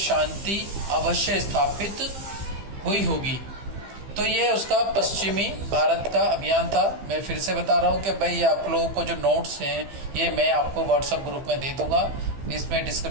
अवश्य स्थापित हुई होगी। तो ये उसका पश्चिमी भारत का अभियान था। मैं फिर से बता रहा हूँ कि भाई आप लोगों को जो नोट्स हैं ये मैं आपको व्हाट्सएप ग्रुप में दे दूंगा। इसमें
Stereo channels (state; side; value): late; left; 15 ms